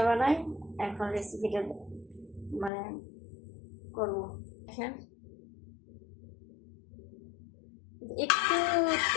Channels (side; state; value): right; drops out; at 2.7 s